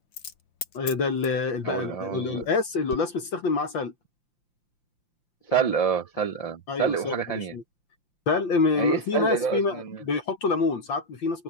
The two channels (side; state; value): right; late; 5.8 ms